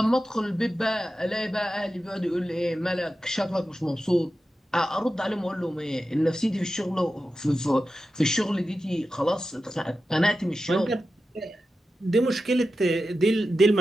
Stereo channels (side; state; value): both; normal; correlation 0.92